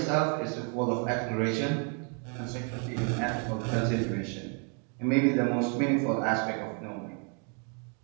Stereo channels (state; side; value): quieter; left; 36.5 dB